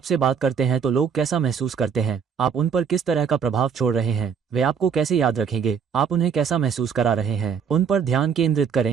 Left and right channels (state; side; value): quieter; left; 6.9 dB